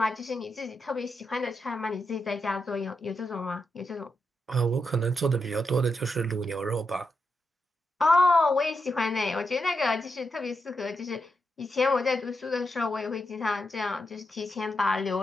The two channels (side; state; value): both; normal; correlation 0.85